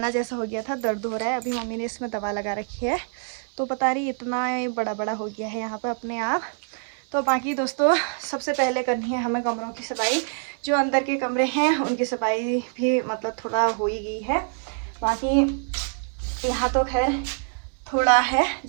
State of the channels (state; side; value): silent; left; 56 dB below the other